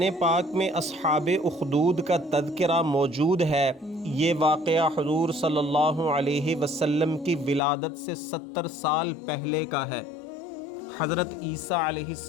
پاک میں اصحاب اخدود کا تذکرہ موجود ہے۔ یہ واقعہ حضور صلی اللہ علیہ وسلم کی ولادت سے 70 سال پہلے کا ہے۔ حضرت عیسیٰ علیہ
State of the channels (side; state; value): right; drops out; at 7.6 s